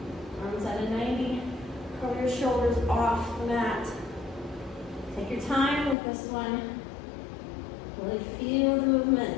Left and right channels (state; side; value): drops out; right; at 6.0 s